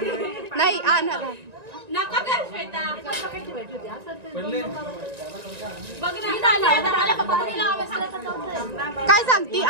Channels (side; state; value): left; late; 1.9 ms